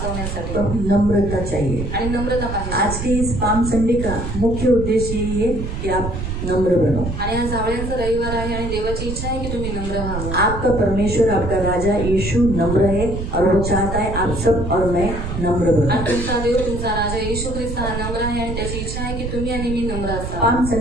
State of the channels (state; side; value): noise; right; rumble, 5 dB below the sound